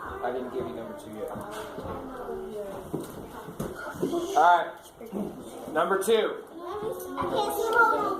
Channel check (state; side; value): identical; both; correlation 1.00